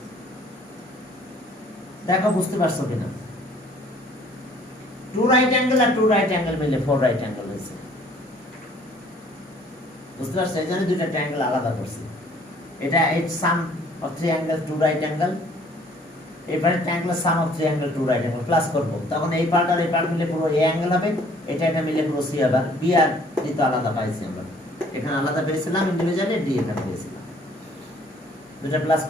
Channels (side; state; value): both; normal; correlation 0.58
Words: দেখো বুঝতে পারছো কিনা, 2 রাইট অ্যাঙ্গেল আর 2 রাইট অ্যাঙ্গেল মিলে 4 রাইট অ্যাঙ্গেল হয়েছে, বুঝতে পারছো? এই জন্য দুইটা ট্রায়াঙ্গেল আলাদা করছি, এটা এই সাম অফ 3 অ্যাঙ্গেল 2 রাইট অ্যাঙ্গেল, এবারে ট্রায়াঙ্গেল সাম of 3 angle 2 right angle plus করব, তখন এই পার্ট আর এই পার্ট মিলে পুরো এ অ্যাঙ্গেল হবে, এটা এটা মিলে পুরো সি হবে। বি আর ডি তো আলাদা পাইছি আমরা, এখানে আলাদা পেয়েছিলাম ইন্ডিভিজুয়ালি, ডি এখানে পেয়েছিলাম, দুটো প্লাস